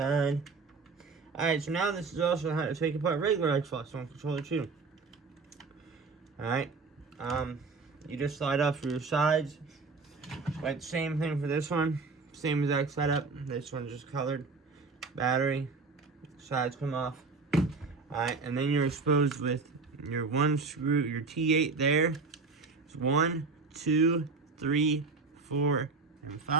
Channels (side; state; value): left; quieter; 4.3 dB